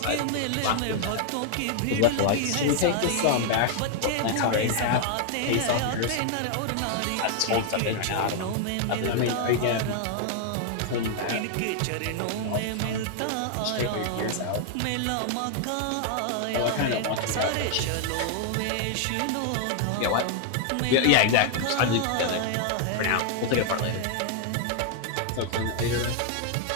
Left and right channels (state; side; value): different; both; correlation 0.00